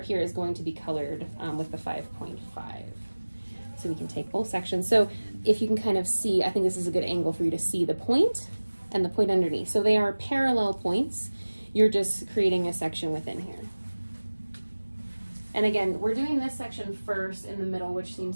here is going to be colored with the 5.5. So we can take both sections. So if you can kind of see, I think this is a good angle for you to see the point and the point underneath. So they are parallel points. You're just creating a section within here. And again, we're doing this section first in the middle, which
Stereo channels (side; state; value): both; inverted; correlation -1.00